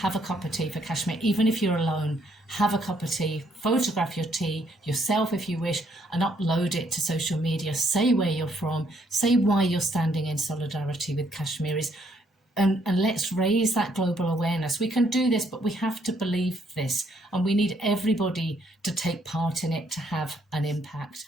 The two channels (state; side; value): normal; both; correlation 0.69